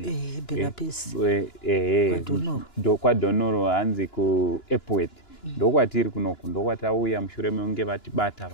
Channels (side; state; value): right; late; 2.9 ms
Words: kwaDonoro hanzi kuEpworth. Ndokwatiri kunoku, ndokwatauya mushure mekunge vatibata